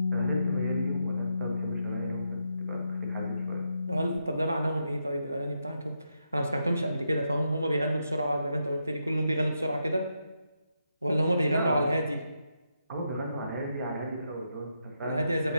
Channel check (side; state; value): both; inverted; correlation -0.83